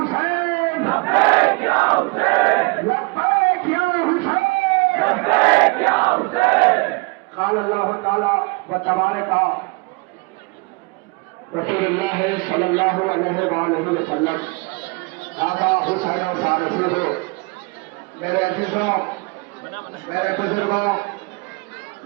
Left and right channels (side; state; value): left; quieter; 28.1 dB